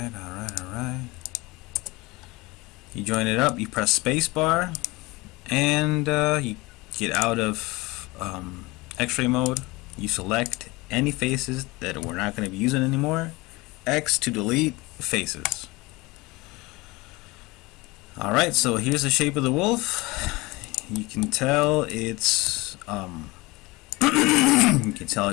Alright. You join it up, you press spacebar, and you get out of X-ray mode. You select any faces that we're not going to be using anymore. X to delete faces. Alright, so here's the shape of the wolf. You can tell it's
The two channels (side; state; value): right; quieter; 22.8 dB